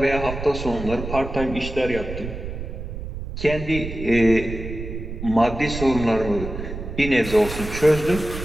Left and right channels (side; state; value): right; noise; rumble, 8 dB below the sound